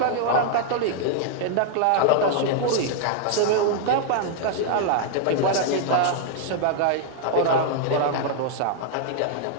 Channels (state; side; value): different; both; correlation -0.01